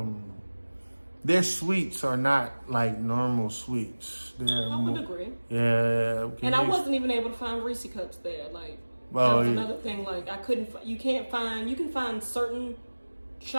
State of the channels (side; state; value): both; inverted; correlation -1.00